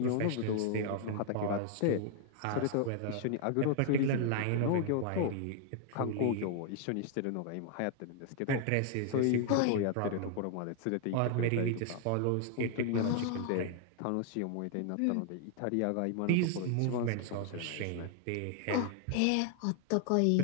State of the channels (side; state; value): both; different; correlation 0.00